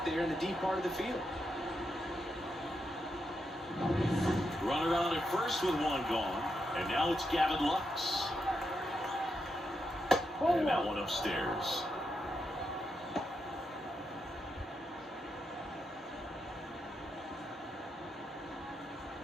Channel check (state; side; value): normal; both; correlation 0.84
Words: there in the deep part of the field. Runner on at first with 1 gone. And now it's Gavin Lux. And that one upstairs.